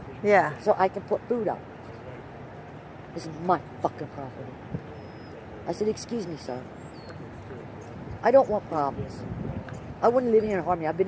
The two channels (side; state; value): both; identical; correlation 1.00